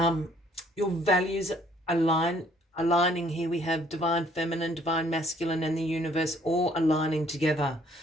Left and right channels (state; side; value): normal; both; correlation 0.62